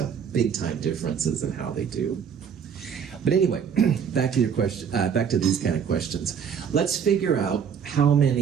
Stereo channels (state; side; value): quieter; left; 7.4 dB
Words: big-time differences in how they do. But anyway, back to your question. Back to these kind of questions. Let's figure out how